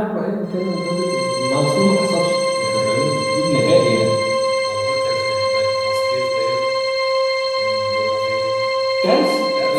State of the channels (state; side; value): identical; both; correlation 1.00